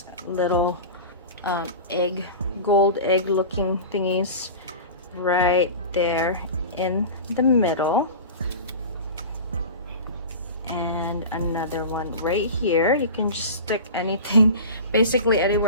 little gold egg looking thingies right there in the middle, and another one right here. You can just stick anything basically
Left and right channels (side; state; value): both; inverted; correlation -0.32